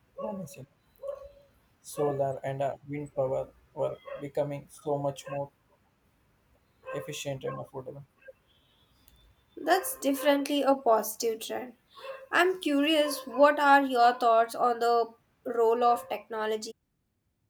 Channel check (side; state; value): both; identical; correlation 1.00